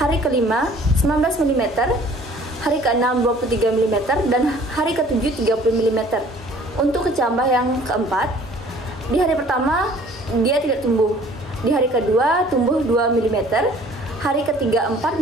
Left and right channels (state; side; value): normal; both; correlation 0.53